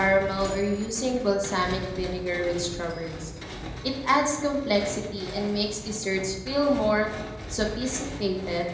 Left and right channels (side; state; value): both; identical; correlation 1.00